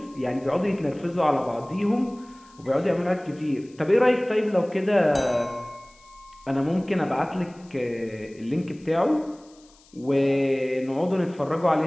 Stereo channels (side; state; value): left; noise; hiss, 28 dB below the sound